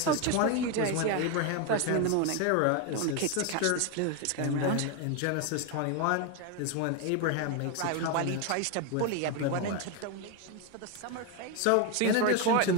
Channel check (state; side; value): different; both; correlation 0.02